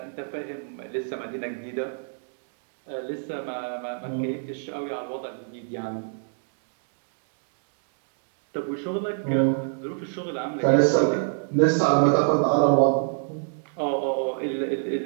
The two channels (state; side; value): silent; left; digital silence